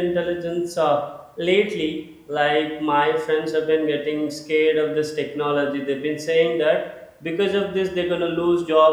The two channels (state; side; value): identical; both; correlation 1.00